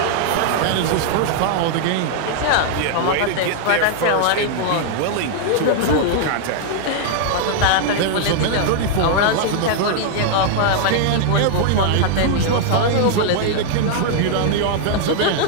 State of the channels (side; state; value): both; different; correlation 0.00